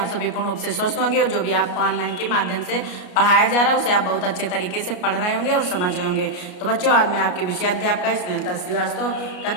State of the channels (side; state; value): right; late; 33 ms